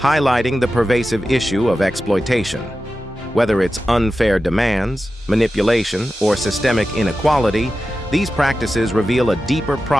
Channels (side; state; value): both; normal; correlation 0.93